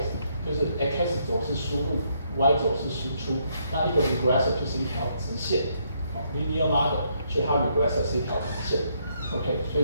就是 x 轴是输入 ，y 轴是输出，那一个 regressor 就是一条直线linear model， 所以它 regressor 是一条直线。OK， 所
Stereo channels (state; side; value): inverted; both; correlation -0.73